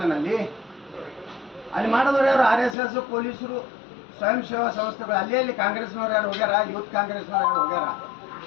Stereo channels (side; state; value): right; drops out; at 2.8 s